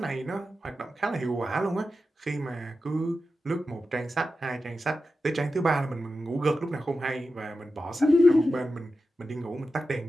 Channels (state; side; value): normal; both; correlation 0.91